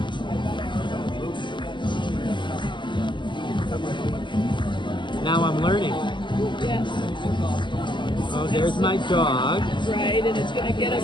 now I'm learning. Yes. Oh, there's my dog. Right, and it's going to get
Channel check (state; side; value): late; right; 0.23 ms